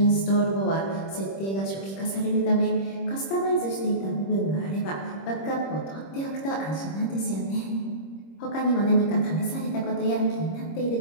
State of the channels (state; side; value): late; right; 26 ms